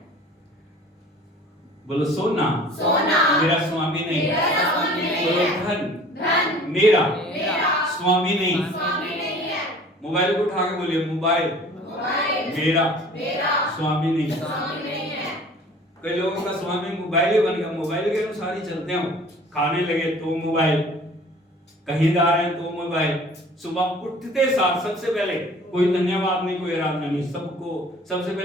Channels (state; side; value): normal; both; correlation 0.48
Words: बोलो सोना मेरा स्वामी नहीं। मेरा स्वामी नहीं बोलो है। धन मेरा स्वामी नहीं। स्वामी नहीं है। मोबाइल को उठा के बोलिए मोबाइल मेरा स्वामी नहीं। स्वामी नहीं है। कई लोगों का स्वामी मोबाइल ही बन गया, मोबाइल के अनुसार ही चलते हो। खाने लगे तो मोबाइल, कहीं जा रहे हैं तो मोबाइल। सुबह उठते साथ सबसे पहले कोई धन्यवाद नहीं, कोई आराधना नहीं, सबको सबसे